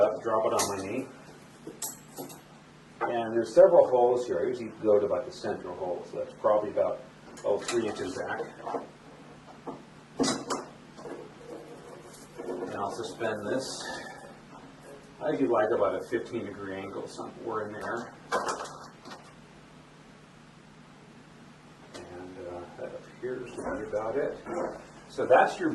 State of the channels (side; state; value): both; identical; correlation 1.00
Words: drop it on my knee. And there's several holes here. I usually go to about the central hole. So that's probably about 3 inches back. And I'll suspend this. I usually like about a 15-degree angle somewhere in there. And that appears to be about it. So that's your